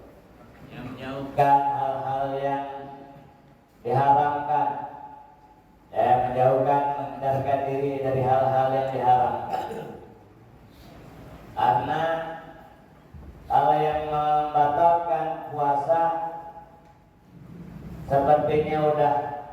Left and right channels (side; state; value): both; identical; correlation 1.00